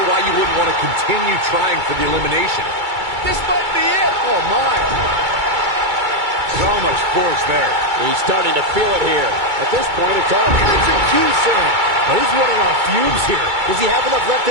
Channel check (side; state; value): left; late; 2.3 ms